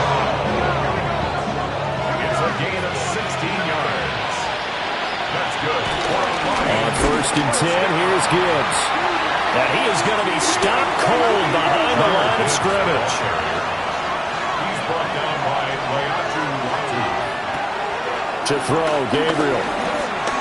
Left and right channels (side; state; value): both; identical; correlation 1.00